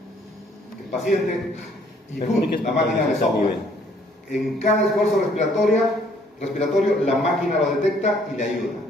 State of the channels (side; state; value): both; normal; correlation 0.63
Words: El paciente y la máquina le sopla. En cada esfuerzo respiratorio, la máquina lo detecta y le ayuda,